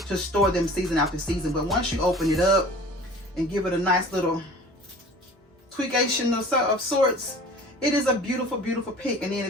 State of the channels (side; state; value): both; normal; correlation 0.44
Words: to store them season after season. But once you open it up and give it a nice little tweakation of sorts, it is a beautiful pick. And then